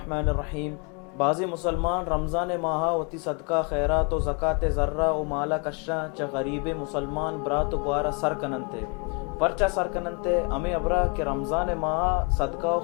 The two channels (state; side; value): quieter; right; 35.0 dB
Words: الرحیم. بعضی مسلمان رمضان ماہا وتی صدقہ خیرات و زکاة ذرہ و مالا کشا چا غریب مسلمان برات و گوارا سر کننتے پرچا سر کننتے ہمیں ابرا کہ رمضان ماہا صدقہ و